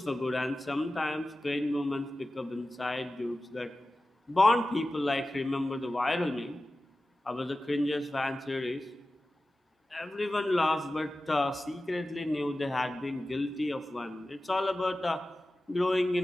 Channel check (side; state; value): both; normal; correlation 0.95